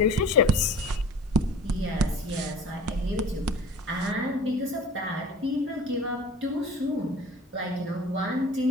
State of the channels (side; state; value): both; normal; correlation 0.42